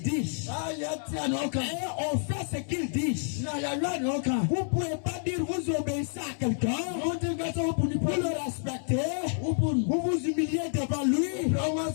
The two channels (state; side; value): silent; right; 59 dB below the other